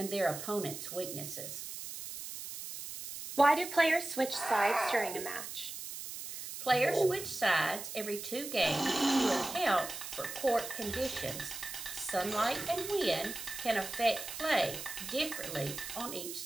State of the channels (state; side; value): noise; right; hiss, 8 dB below the sound